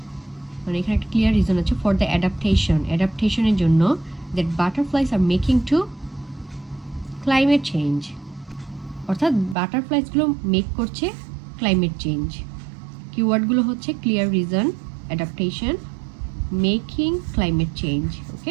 মানে এখানে একটা ক্লিয়ার রিজন আছে ফর দ্য অ্যাডাপ্টেশনের জন্য, that butterflies are making to climate change, অর্থাৎ বাটারফ্লাইসগুলো মেক করছে ক্লাইমেট চেঞ্জ। কিওয়ার্ডগুলো হচ্ছে clear reason, adaptation, making, climate change.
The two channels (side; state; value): left; drops out; at 9.6 s